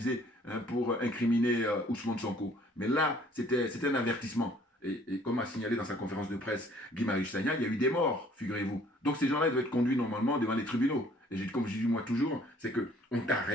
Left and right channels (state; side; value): normal; both; correlation 0.57